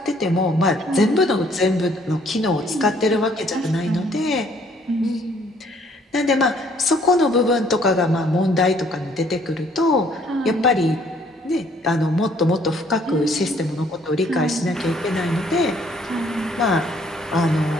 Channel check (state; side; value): normal; both; correlation 0.62